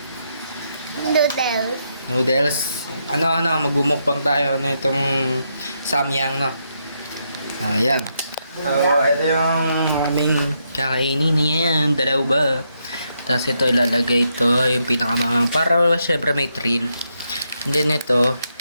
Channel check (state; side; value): inverted; both; correlation -0.80